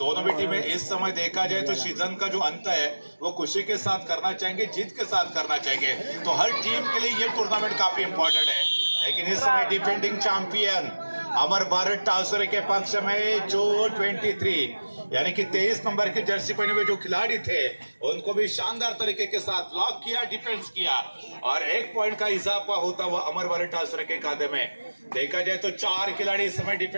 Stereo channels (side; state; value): both; inverted; correlation -1.00